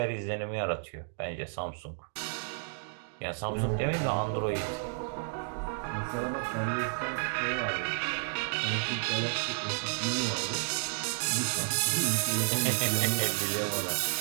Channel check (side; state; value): left; silent; digital silence